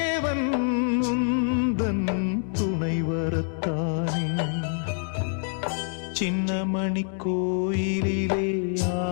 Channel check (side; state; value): right; silent; digital silence